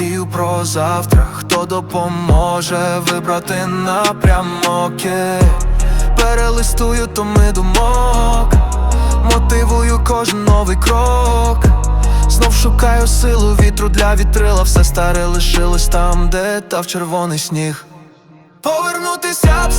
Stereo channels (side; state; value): both; identical; correlation 1.00